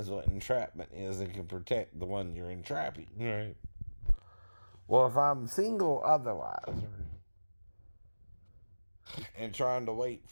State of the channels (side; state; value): both; inverted; correlation -1.00